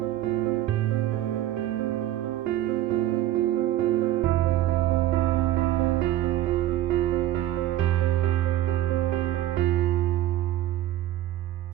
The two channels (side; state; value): left; quieter; 13.7 dB